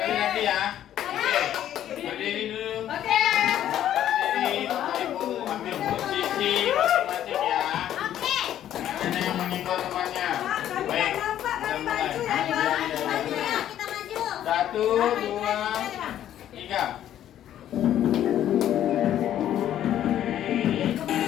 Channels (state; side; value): quieter; right; 11.4 dB